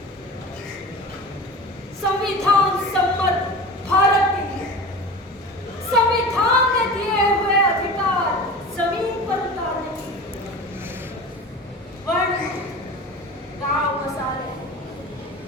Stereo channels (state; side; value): normal; both; correlation 0.34